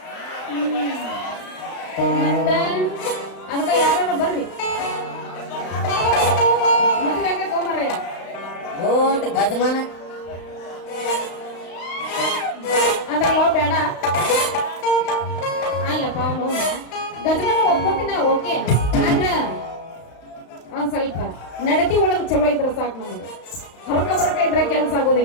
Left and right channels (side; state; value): right; late; 35 ms